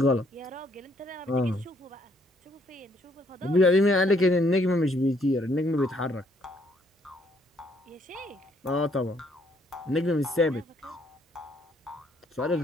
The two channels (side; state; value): both; normal; correlation 0.68